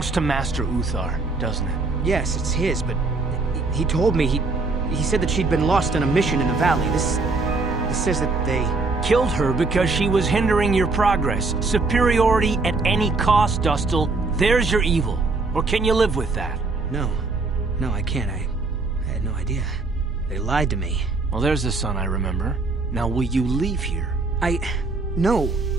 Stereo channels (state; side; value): quieter; left; 3.7 dB